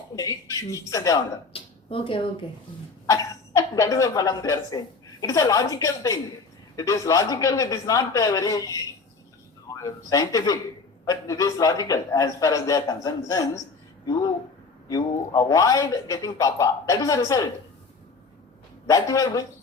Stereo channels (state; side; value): quieter; right; 4.3 dB